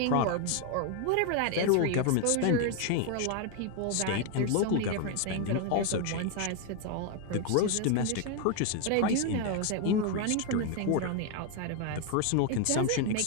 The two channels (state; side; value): different; both; correlation 0.01